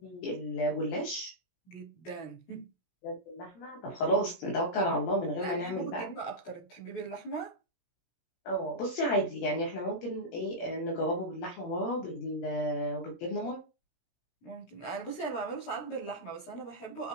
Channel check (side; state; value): right; late; 17 ms